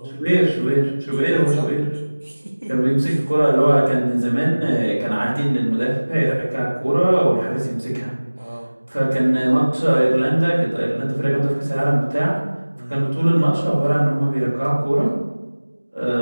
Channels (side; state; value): both; inverted; correlation -1.00